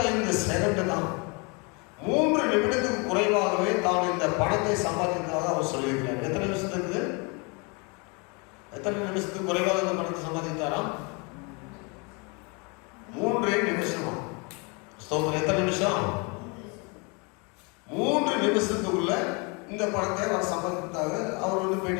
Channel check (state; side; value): quieter; right; 31.2 dB